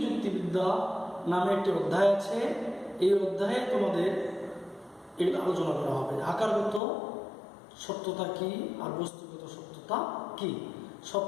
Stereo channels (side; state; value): right; drops out; at 6.8 s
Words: যুক্তিবিদ্যা নামে একটি অধ্যায় আছে। এই অধ্যায়ে তোমাদের এগুলো আলোচনা করা হবে। আকারগত সত্যতা কি আর বস্তুগত সত্যতা কি।